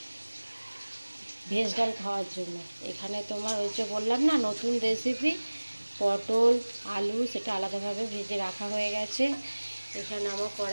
ভেজ ডাল খাওয়ার জন্য। এখানে তোমার ওই যে বললাম না নতুন রেসিপি, পটল আলু সেটা আলাদাভাবে ভেজে রাখা হয়ে গেছে। এখানে আমার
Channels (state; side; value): inverted; both; correlation -1.00